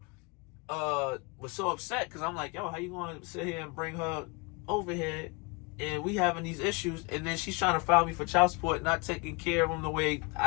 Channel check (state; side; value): quieter; right; 29.1 dB